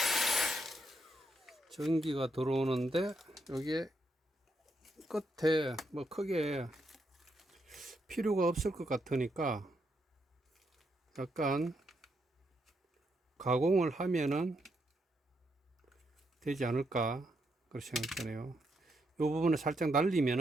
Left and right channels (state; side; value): normal; both; correlation 0.79